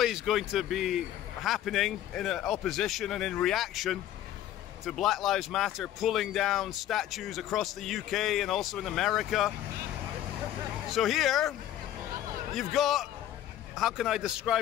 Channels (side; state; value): right; quieter; 12.1 dB